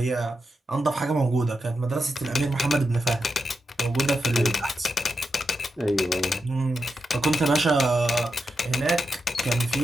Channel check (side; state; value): both; normal; correlation 0.87